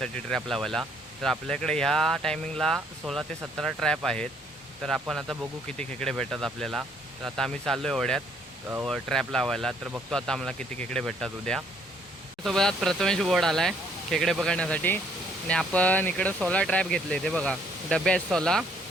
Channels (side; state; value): both; normal; correlation 0.65